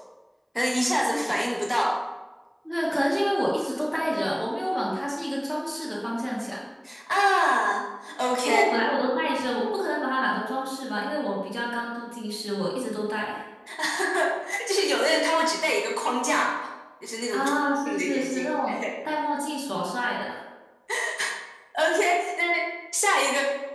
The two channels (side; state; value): both; identical; correlation 1.00